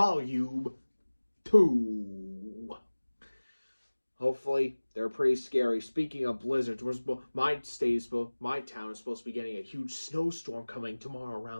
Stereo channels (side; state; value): both; inverted; correlation -1.00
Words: 2. Hopefully, they're pretty scary. Speaking of blizzards, my town is supposed to be getting a huge snowstorm coming tomorrow